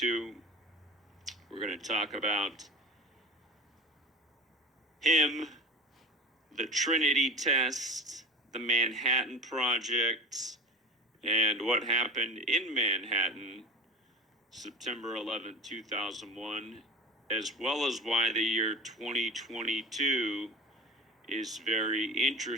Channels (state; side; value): normal; both; correlation 0.32